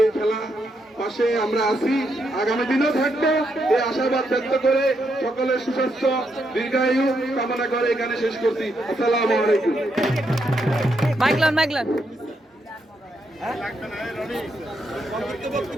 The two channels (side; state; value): both; normal; correlation 0.79